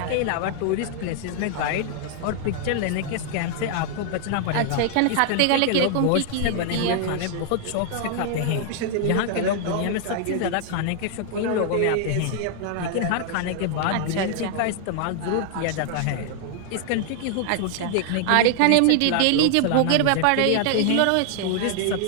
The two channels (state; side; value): different; both; correlation 0.00